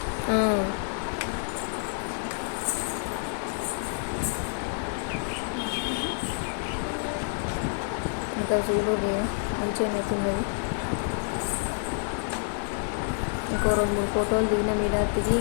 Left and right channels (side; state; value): right; silent; 59 dB below the other